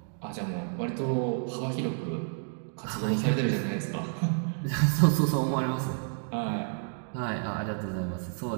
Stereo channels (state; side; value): silent; left; 58 dB below the other